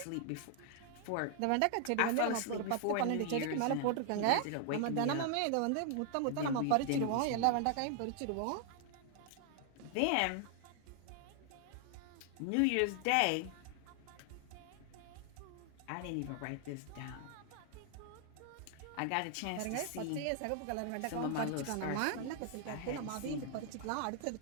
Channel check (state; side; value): different; both; correlation 0.00